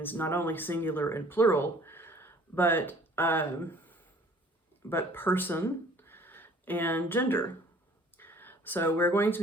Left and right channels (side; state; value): both; normal; correlation 0.53